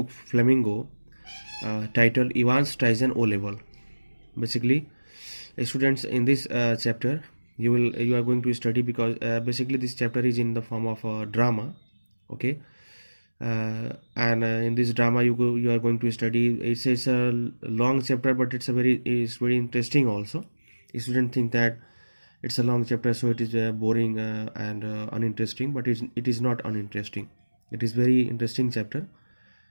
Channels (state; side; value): inverted; both; correlation -1.00